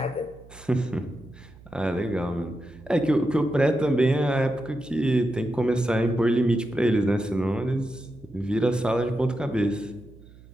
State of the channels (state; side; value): noise; right; hum, 22 dB below the sound